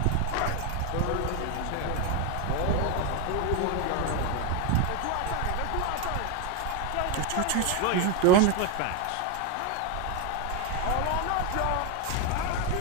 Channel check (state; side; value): different; both; correlation 0.02